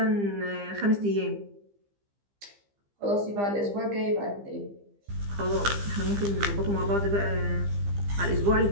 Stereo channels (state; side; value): late; left; 15 ms